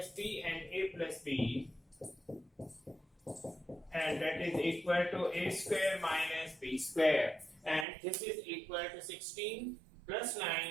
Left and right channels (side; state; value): left; drops out; at 7.9 s